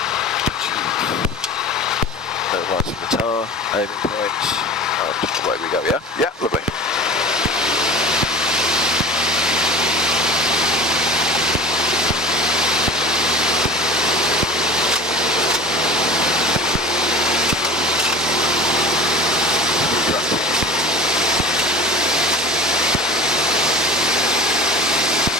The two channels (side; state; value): both; normal; correlation 0.37